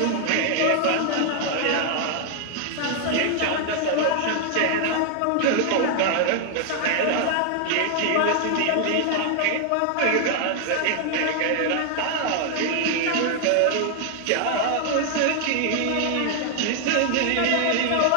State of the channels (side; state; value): both; different; correlation 0.00